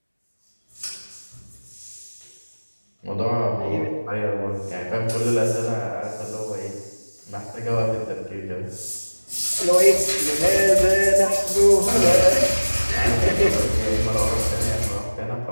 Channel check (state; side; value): inverted; both; correlation -1.00